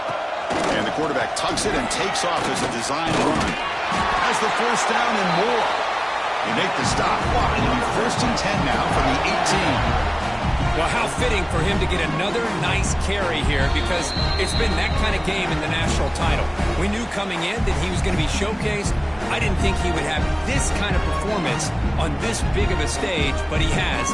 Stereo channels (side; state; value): both; identical; correlation 1.00